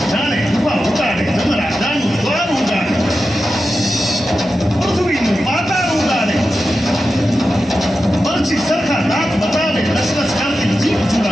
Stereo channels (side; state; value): both; normal; correlation 0.91